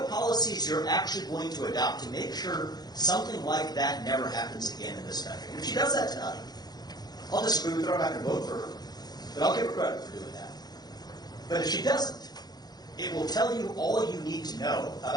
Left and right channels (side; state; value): right; late; 0.19 ms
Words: policies you're actually going to adopt to make sure something like that never happens again in this country. And if she does that tonight, I'll disagree with her, I'm not going to vote for her, but I'll give her credit for doing that. But if she doesn't, it will tell you all you need to know